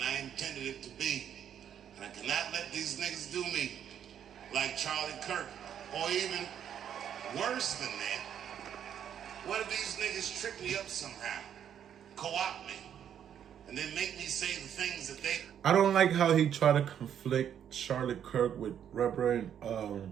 I intended it to be. And I cannot let these niggas do me like Charlie Kirk, or even worse than that. What if these niggas trick me up somehow, co-opt me, and then make me say the things that they... I don't like how he tried to conflict Charlie Kirk with Reverend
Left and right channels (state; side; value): quieter; left; 9.2 dB